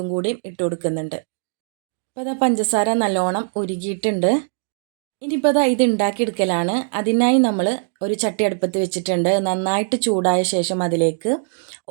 കൂടി ഇട്ട് കൊടുക്കുന്നുണ്ട്. അപ്പോൾ അതാ പഞ്ചസാര നല്ലോണം ഉരുകിയിട്ടുണ്ട്. ഇനിയിപ്പോൾ അതാ ഇത് ഉണ്ടാക്കിയെടുക്കലാണ്. അതിനായി നമ്മൾ ഒരു ചട്ടി അടുപ്പത്ത് വെച്ചിട്ടുണ്ട്. നന്നായിട്ട് ചൂടായ ശേഷം അതിലേക്ക്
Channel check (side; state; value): left; silent; digital silence